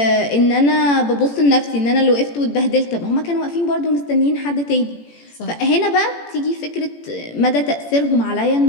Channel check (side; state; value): right; late; 18 ms